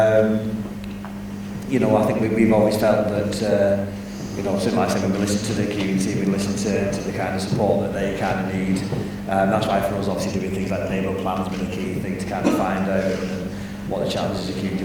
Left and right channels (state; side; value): identical; both; correlation 1.00